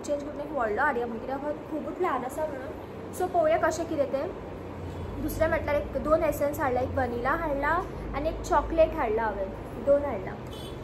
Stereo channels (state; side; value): identical; both; correlation 1.00